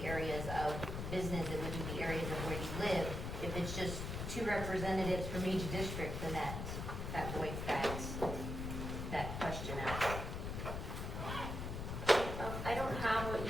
business, it wouldn't be areas of where you live. If it's just 2 representatives from each district, then that voids that question out. I don't have what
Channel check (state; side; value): noise; left; rumble, 4 dB below the sound